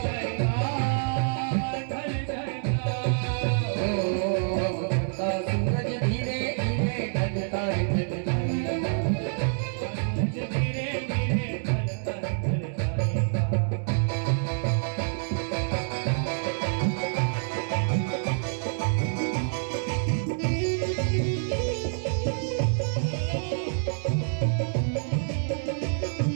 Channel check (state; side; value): silent; left; 60 dB below the other